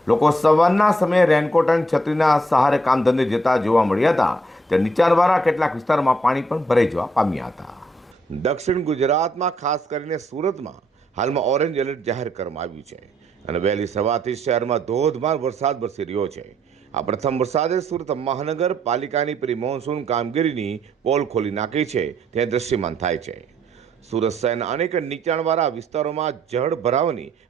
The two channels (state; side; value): normal; both; correlation 0.70